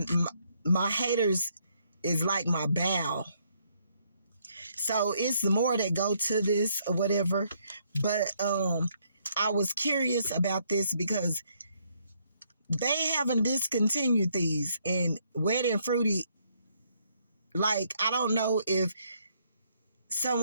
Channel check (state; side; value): inverted; both; correlation -0.70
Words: my haters is like my bow. So it's more that go to this or whatever. But I was curious about this because they haven't discontinued these. And Wet and Fruity, like, I don't know if